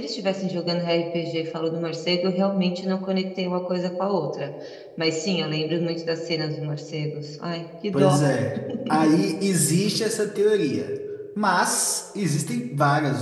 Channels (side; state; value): both; identical; correlation 1.00